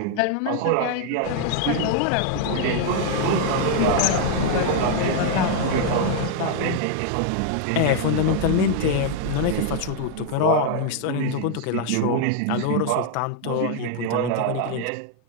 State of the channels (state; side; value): different; both; correlation 0.00